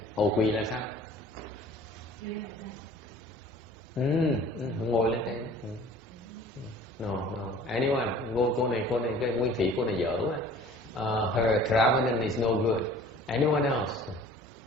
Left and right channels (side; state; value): both; normal; correlation 0.48